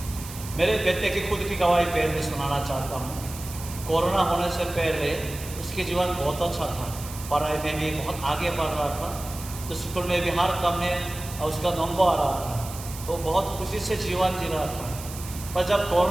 मेरे बेटे की खुद की गवाही पहले सुनाना चाहता हूँ। कोरोना होने से पहले उसके जीवन बहुत अच्छा था, पढ़ाई में भी बहुत आगे बढ़ रहा था, तो स्कूल में भी हर काम में उसका नंबर आ रहा था, तो बहुत खुशी से जीवन जी रहा था। पर जब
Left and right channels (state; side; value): noise; right; hiss, 13 dB below the sound